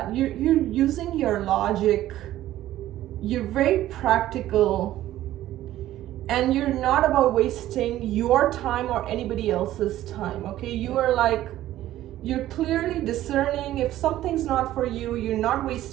you're using your logic. You're very practical, and you're not about wasting your time or anybody else's time, okay? You're clearly discerning. If something's not for you, you're not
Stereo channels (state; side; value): quieter; left; 13.9 dB